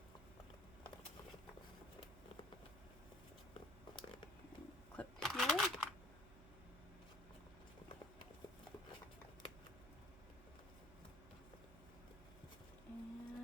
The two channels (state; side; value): noise; right; hum, 16 dB below the sound